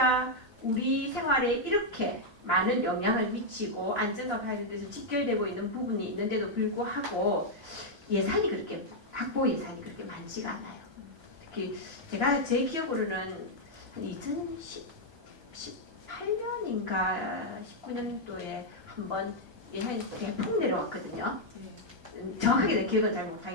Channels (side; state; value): left; late; 1.3 ms